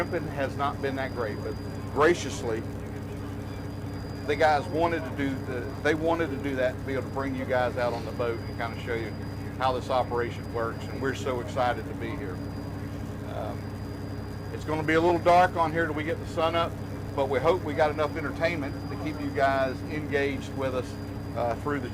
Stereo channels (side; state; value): both; identical; correlation 1.00